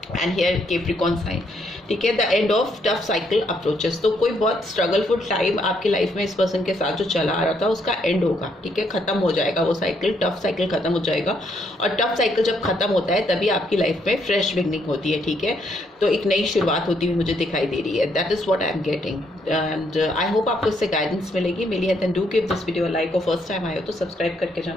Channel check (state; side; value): normal; both; correlation 0.73